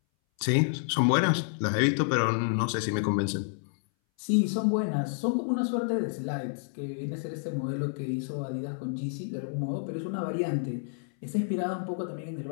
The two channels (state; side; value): silent; right; 58 dB below the other